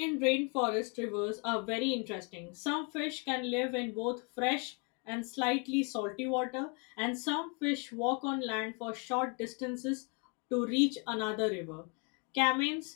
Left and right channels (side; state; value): right; quieter; 35.1 dB